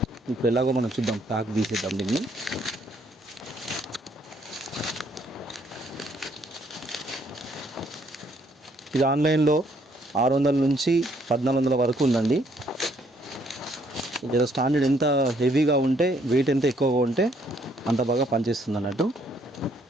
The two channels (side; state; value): both; normal; correlation 0.68